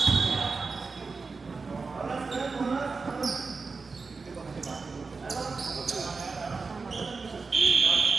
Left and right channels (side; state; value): left; quieter; 4.4 dB